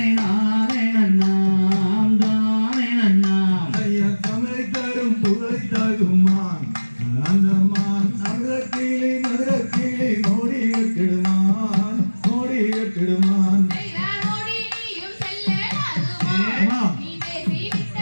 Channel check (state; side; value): inverted; both; correlation -1.00